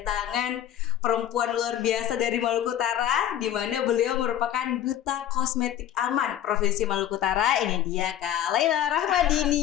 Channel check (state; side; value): quieter; right; 11.3 dB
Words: perempuan luar biasa dari Maluku Utara, di mana beliau merupakan Duta Kosmetik Aman Provinsi Maluku Utara. Ini dia Kak Laila